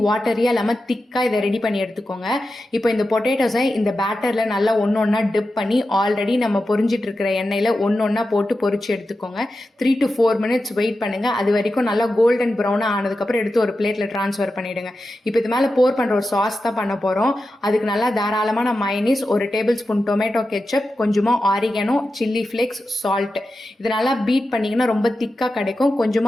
வாட்டரியாக இல்லாமல் திக்காக இதை ரெடி பண்ணி எடுத்துக்கோங்க. இப்போ இந்த பொட்டேட்டோஸை இந்த பேட்டரில் நல்லா ஒன்று ஒன்றா டிப் பண்ணி ஆல்ரெடி நம்ம பொரிஞ்சிட்டு இருக்கிற எண்ணெயில் ஒன்றா போட்டு பொரிச்சு எடுத்துக்கோங்க. 3 to 4 minutes வெயிட் பண்ணுங்க. அது வரைக்கும் நல்லா கோல்டன் ப்ரௌனாக ஆனதுக்கப்புறம் எடுத்து ஒரு பிளேட்டில் ட்ரான்ஸ்ஃபர் பண்ணிடுங்க. இப்போ இது மேலே போர் பண்ணுற ஒரு சாஸ் தான் பண்ண போகிறோம். அதுக்கு நல்லா தாராளமான mayonnaise, 1 tablespoon tomato ketchup, கொஞ்சமாக ஆரிகானோ, சில்லி ஃப்ளேக்ஸ், சால்ட், இது நல்லா பீட் பண்ணிங்கன்னா ரொம்ப திக்காக கிடைக்கும்.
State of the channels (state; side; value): normal; both; correlation 0.91